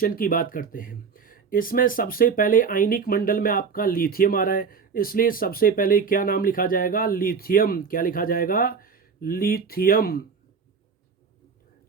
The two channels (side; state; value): left; quieter; 5.8 dB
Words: की बात करते हैं। इसमें सबसे पहले आयनिक मंडल में आपका लिथियम आ रहा है, इसलिए सबसे पहले क्या नाम लिखा जाएगा? लिथियम। क्या लिखा जाएगा? लिथियम।